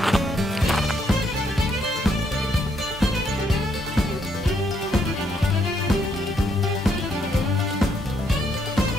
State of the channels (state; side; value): normal; both; correlation 0.73